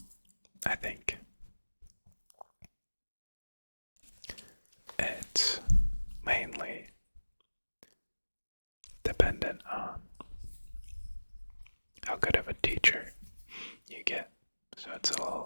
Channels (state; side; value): inverted; both; correlation -1.00